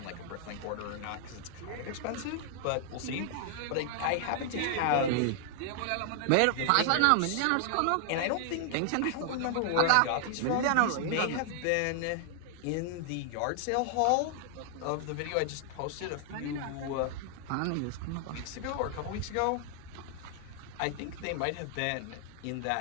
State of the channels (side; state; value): both; different; correlation 0.00